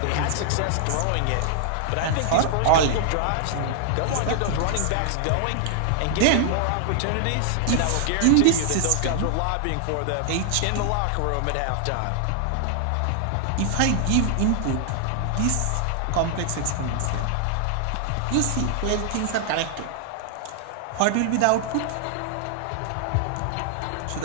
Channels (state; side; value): different; both; correlation 0.00